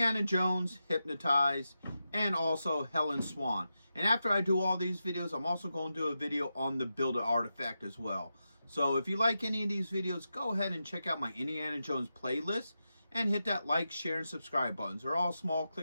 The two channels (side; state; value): both; inverted; correlation -0.89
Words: Jones Hypnotized, and also Helen Swan. And after I do all these videos, I'm also going to do a video on the Build-A Artifact as well. So if you like any of these videos, go ahead and check out my Indiana Jones playlist and hit that like, share, and subscribe buttons. They're all small